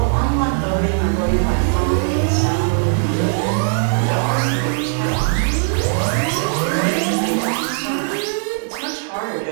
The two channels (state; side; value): silent; left; digital silence